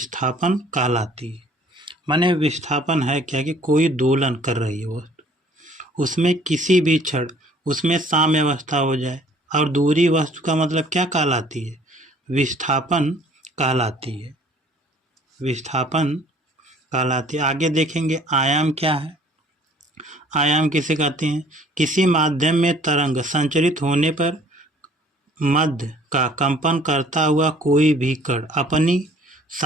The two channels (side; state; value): both; normal; correlation 0.56